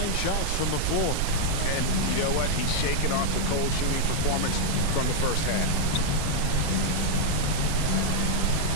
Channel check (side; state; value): both; different; correlation -0.01